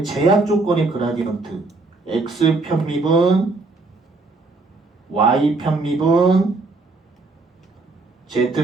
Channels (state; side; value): quieter; left; 3.5 dB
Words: 제약 조건의 그라디언트, x 편미분, y 편미분,